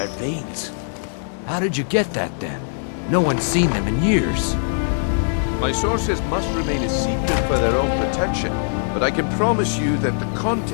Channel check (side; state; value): right; silent; digital silence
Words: veins. How did you get that then? No one's seen them in years. My sources must remain a secret for their own protection, but I can promise you that the